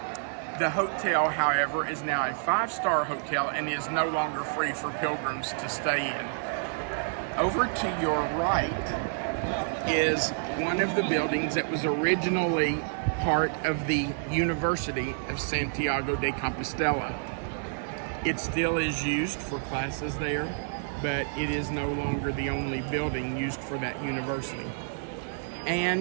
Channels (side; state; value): left; silent; 59 dB below the other